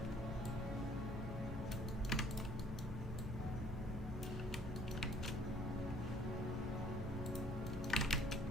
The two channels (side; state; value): both; normal; correlation 0.58